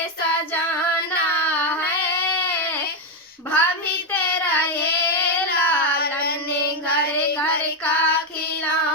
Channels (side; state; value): both; normal; correlation 0.05